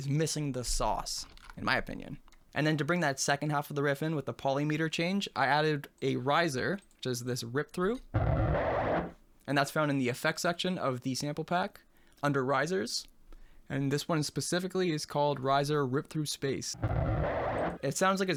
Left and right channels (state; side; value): identical; both; correlation 1.00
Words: missing the sauce, in my opinion. And then to bring that second half of the riff in with the polymeter change, I added a riser, which is this rip through. And that's found in the effects section of the sample pack under risers. And this one specifically is called Riser Rip Through Space. It sounds like